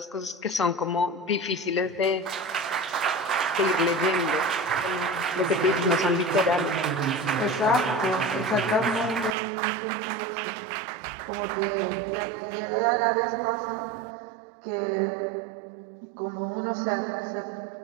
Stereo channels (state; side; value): drops out; left; at 9.3 s